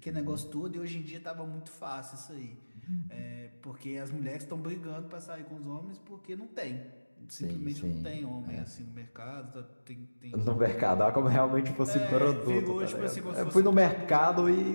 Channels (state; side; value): inverted; both; correlation -1.00